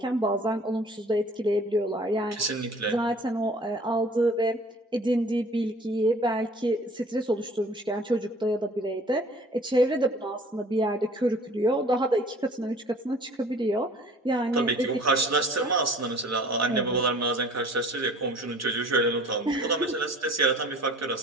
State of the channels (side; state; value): both; normal; correlation 0.49